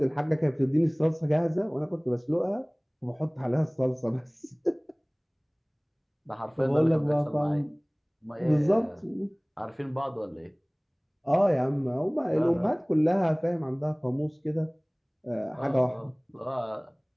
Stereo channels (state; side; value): identical; both; correlation 1.00